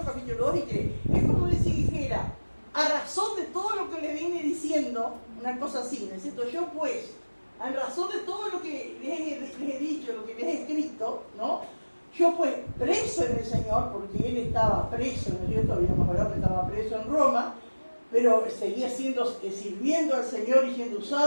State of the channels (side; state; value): both; inverted; correlation -1.00